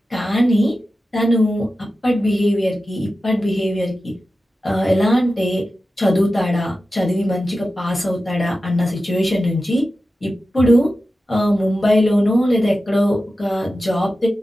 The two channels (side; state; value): both; normal; correlation 0.93